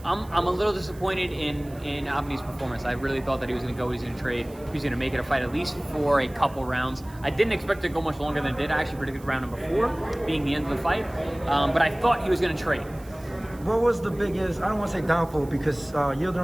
I'm a little disappointed in Avni's performance. I really thought that he was going to go, he was going to trade, he was going to make it a fight at least for a couple rounds. I didn't expect it to go much longer than it did. I actually predicted round number 4 being the end of the fight, but I thought he was going to trade. What was the biggest, I don't want to say downfall, because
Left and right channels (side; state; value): right; noise; hiss, 24 dB below the sound